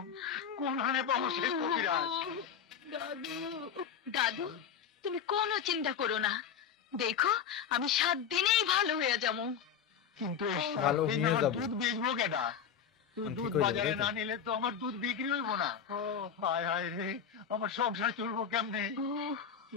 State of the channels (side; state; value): right; quieter; 7.7 dB